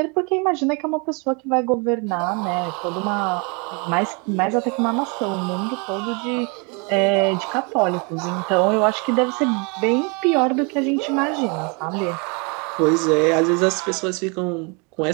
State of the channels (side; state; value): left; quieter; 32.3 dB